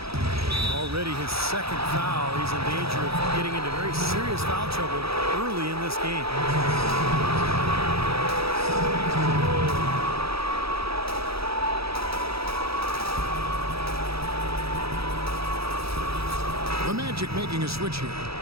Already his second foul. He's in danger of getting into very serious foul trouble early in this game. The Magic making a switch here.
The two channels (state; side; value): late; left; 0.77 ms